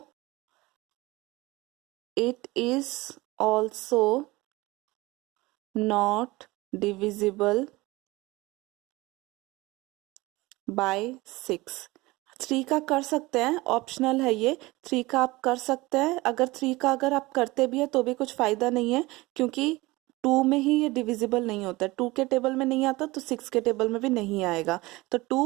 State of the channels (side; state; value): left; quieter; 21.1 dB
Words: it is also not divisible by 6। 3 का कर सकते हैं, ऑप्शनल है ये, 3 का आप कर सकते हैं। अगर 3 का अगर आप करते भी है तो भी कुछ फायदा नहीं है, क्योंकि 2 में ही ये डिविजिबल नहीं होता है, 2 के टेबल में नहीं आता तो 6 के टेबल में भी नहीं आएगा, तो